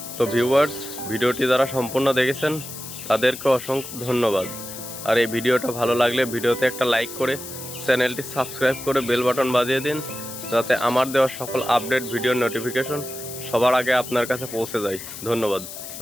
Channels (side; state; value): left; noise; hiss, 11 dB below the sound